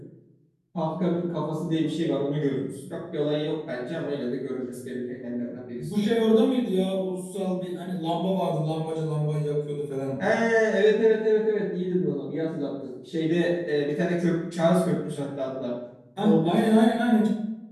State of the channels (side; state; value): both; identical; correlation 1.00